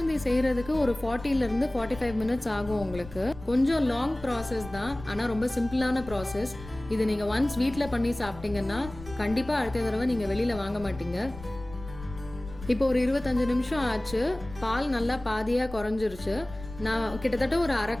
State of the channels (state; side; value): noise; left; rumble, 15 dB below the sound